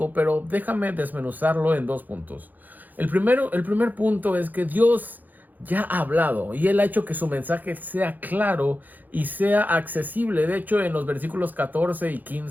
pero déjame desmenuzarlo en dos puntos. El primer punto es que Dios ya ha hablado y Él ha hecho que su mensaje sea claro y sea accesible. De hecho, en los versículos 14 y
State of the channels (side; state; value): left; late; 0.084 ms